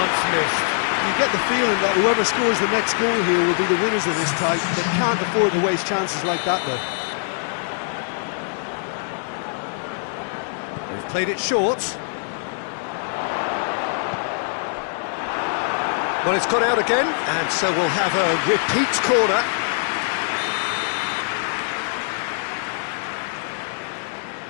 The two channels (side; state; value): right; silent; digital silence